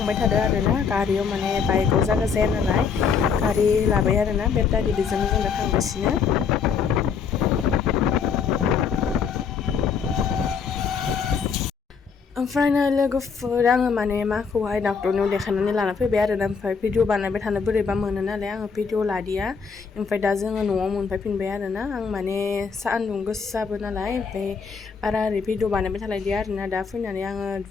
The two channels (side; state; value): right; quieter; 6.0 dB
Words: थादों आरोना गारियाव माने बाइकआव जायगा जाया नालाय गारि लाबाय आरोना बेटारि बेजोंनो जों दा थांगासिनो ओमफ्राय नै लोगोफोर आङो माने माखौहाय डाक्टरनियाव देखायनानै लाना फैबाय आरोना ओमफ्राय भिडिअ बानायबाय थानो बोरैबा मोनो नालाय आङो भिडिअ लादिया ओमफ्राय दा जोङो न'आव मोनफैफिनबाय आरोना आं माने सान्दुं गोसाबो नालाय ओमफ्राय बारा ओरै भिडिअ बानायबाय थालायदिया आरोना दा फैनानै आङो